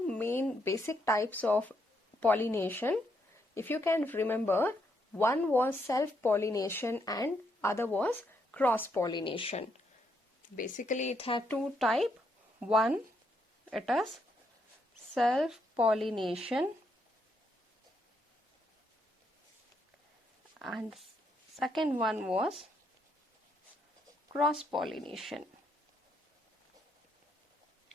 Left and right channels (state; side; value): normal; both; correlation 0.76